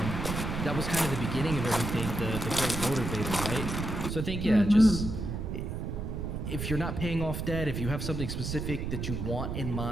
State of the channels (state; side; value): noise; right; rumble, 4 dB below the sound